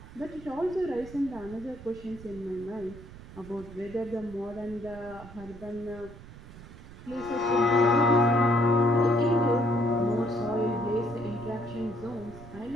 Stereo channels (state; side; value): noise; right; rumble, 16 dB below the sound